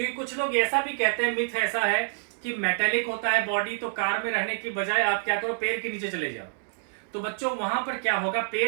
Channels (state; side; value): silent; left; 60 dB below the other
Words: कुछ लोग ऐसा भी कहते हैं, मिथ ऐसा है कि मेटेलिक होता है बॉडी, तो कार में रहने की बजाय आप क्या करो, पेड़ के नीचे चले जाओ। तो बच्चों, वहां पर क्या होगा,